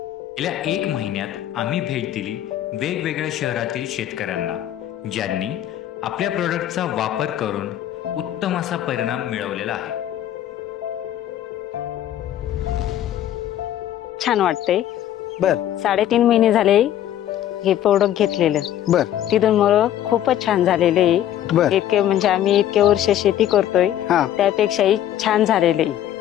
गेल्या 1 महिन्यात आम्ही भेट दिली वेगवेगळ्या शहरातील शेतकऱ्यांना, ज्यांनी आपल्या प्रोडक्टचा वापर करून उत्तम असा परिणाम मिळवलेला आहे। छान वाटते। बर 3.5 महिने झाले हे प्रोडक्ट घेतलेलं। बर तिथून मला खूपच छान झालेले आहे। बर इतके म्हणजे आम्ही इतके वर्ष शेती करतोय हा त्यापेक्षाही छान झालेले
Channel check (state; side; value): quieter; right; 11.7 dB